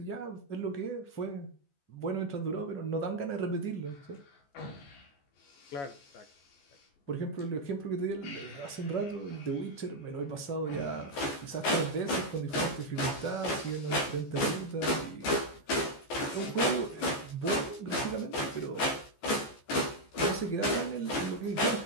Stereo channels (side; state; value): right; late; 14 ms